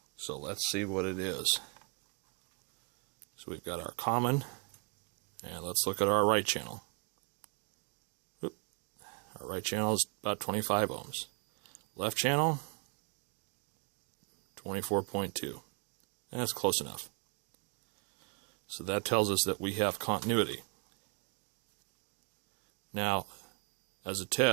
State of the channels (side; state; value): left; quieter; 34.6 dB